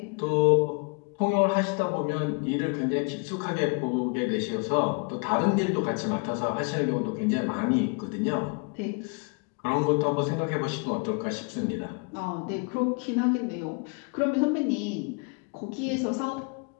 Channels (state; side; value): quieter; right; 34.1 dB